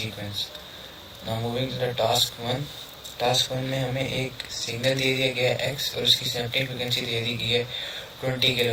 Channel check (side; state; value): both; identical; correlation 1.00